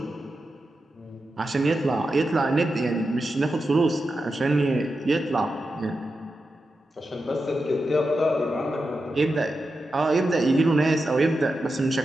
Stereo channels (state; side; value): normal; both; correlation 0.89